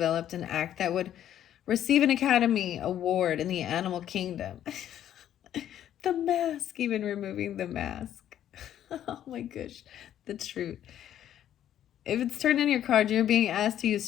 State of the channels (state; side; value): quieter; right; 11.1 dB